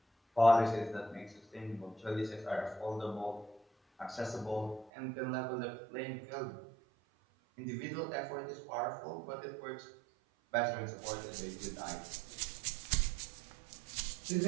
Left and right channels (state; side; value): drops out; left; at 4.9 s